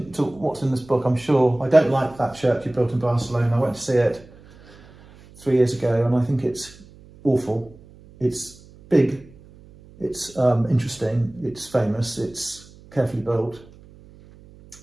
to what's in this book, I'm sure. I don't like that church he built in Barcelona. I went to see it 3 years ago and I think it's awful. It's big, it's interesting, it's famous, it's carefully built,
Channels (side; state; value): right; noise; hum, 23 dB below the sound